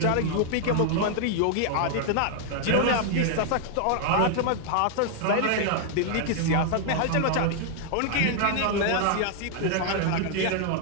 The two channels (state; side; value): different; both; correlation 0.00